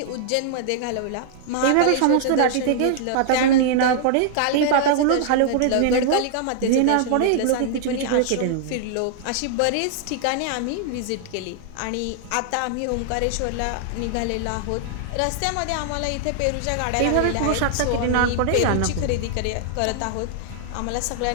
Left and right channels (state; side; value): different; both; correlation -0.01